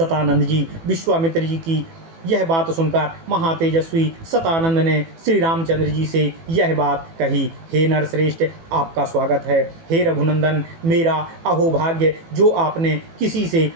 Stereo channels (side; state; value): left; late; 18 ms